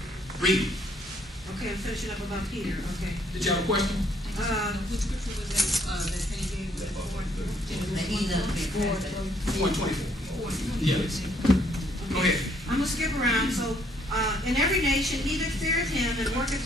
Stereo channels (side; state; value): both; normal; correlation 0.67